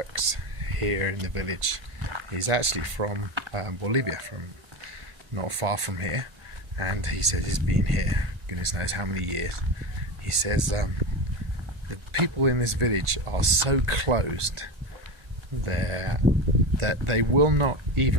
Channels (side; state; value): left; late; 1.6 ms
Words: here in the village. He's actually from Bolivia, from not far from here, and he said he's been here goodness knows how many years. He says the people in this village are so closed that they will not